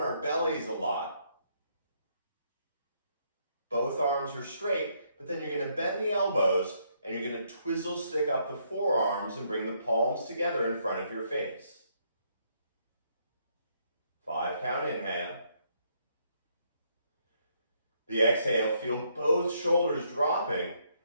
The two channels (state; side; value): inverted; both; correlation -0.72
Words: bellies a lot. Both arms are straight, but then you're going to bend the elbows and you're going to twizzle stick up the forearms and bring the palms together in front of your face. 5 count inhale. The exhale, feel both shoulders dropping